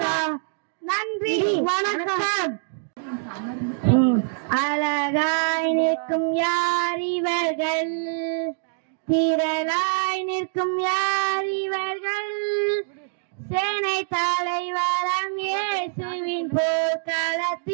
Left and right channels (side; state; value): left; silent; digital silence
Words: நன்றி, வணக்கம். அழகாய் நிற்கும் யார் இவர்கள், திரளாய் நிற்கும் யார் இவர்கள், சேனை தலைவரம் இயேசுவின்